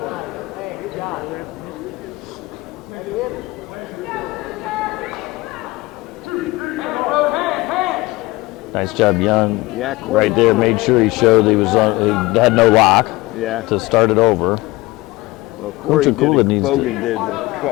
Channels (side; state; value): right; quieter; 20.8 dB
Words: Nice job, Young. Yeah, cool. Right there, made sure he showed he had no lock. Yeah. To start it over. Well,